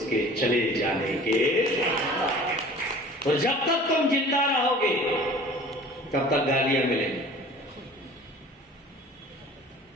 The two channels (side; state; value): both; normal; correlation 0.45